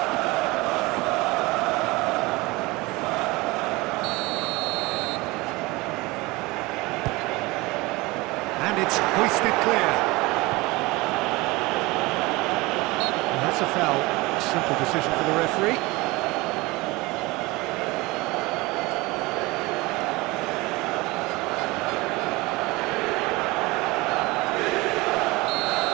And it's hoisted clear. And that's a foul. A simple decision for the referee.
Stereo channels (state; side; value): quieter; left; 22.5 dB